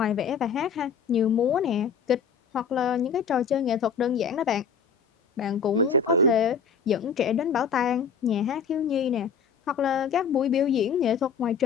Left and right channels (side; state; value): right; quieter; 6.4 dB